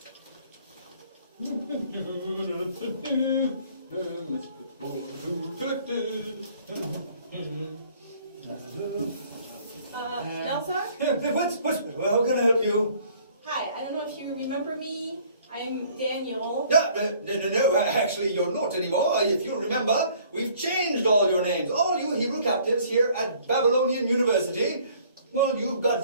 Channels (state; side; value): inverted; both; correlation -0.57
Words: What's, how can I help you? Hi, I don't know if you remember me. I'm Daniel. No, actually you're not anymore. If you remember, we've changed all your names. All you Hebrew captives here at Babylonian University, well, you've got